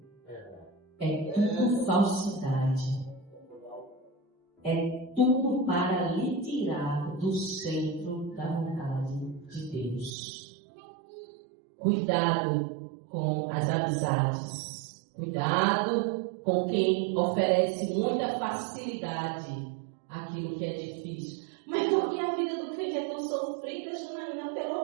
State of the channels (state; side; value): drops out; left; at 10.1 s